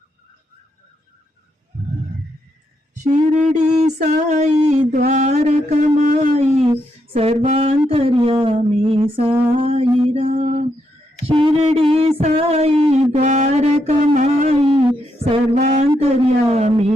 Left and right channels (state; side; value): normal; both; correlation 0.79